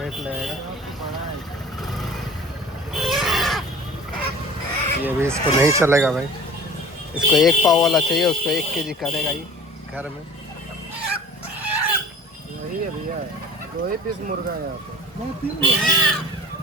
लगेगा। ये भी इसको नहीं चलेगा भाई, इसको 1 पाव वाला चाहिए, उसको 1 केजी करेगा ही घर में। वही है भैया, 2 ही पीस मुर्गा है यहाँ पे।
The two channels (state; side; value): normal; both; correlation 0.43